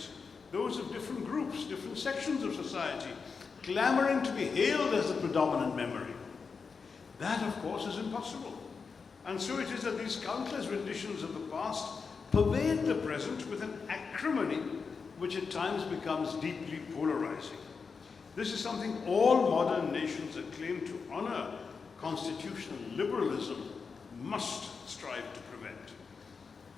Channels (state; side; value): quieter; right; 5.2 dB